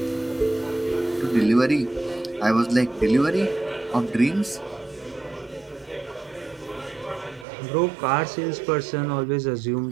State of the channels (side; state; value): left; drops out; at 7.5 s